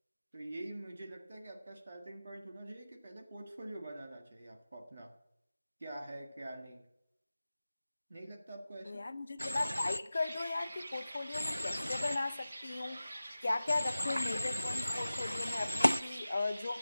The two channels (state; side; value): inverted; both; correlation -0.95